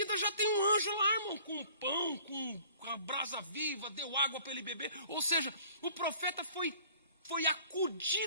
já tem um anjo lá, irmão, com pão, com a brasa viva, deu água para ele beber. Ou seja, o profeta foi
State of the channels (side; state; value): both; inverted; correlation -0.51